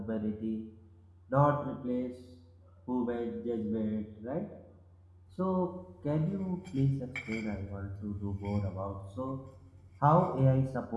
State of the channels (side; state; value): both; identical; correlation 1.00